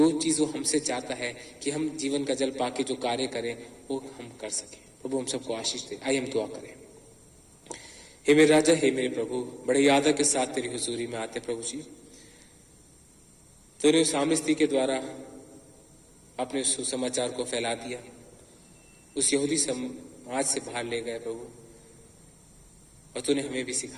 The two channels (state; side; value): identical; both; correlation 1.00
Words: चीज वो हमसे चाहता है कि हम जीवन का जल पाके जो कार्य करें, वो हम कर सके। प्रभु हम सबको आशीष दे। आइए हम दुआ करें। हे मेरे राजा, हे मेरे प्रभु, बड़े यादा के साथ तेरी हुजूरी में आते प्रभु जी। तूने उस सामरी स्त्री के द्वारा अपने सुसमाचार को फैला दिया, उस यहूदी समाज से बाहर ले गए प्रभु, और तूने हमें भी